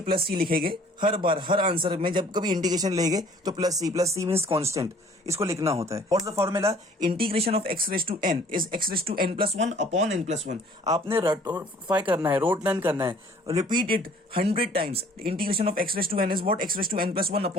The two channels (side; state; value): both; normal; correlation 0.55